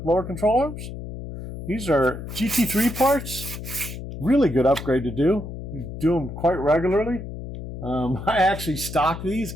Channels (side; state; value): left; noise; hum, 9 dB below the sound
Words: lower control arms. These are GT3 parts. Really good upgrade to do. We do them quite regularly. I actually stock these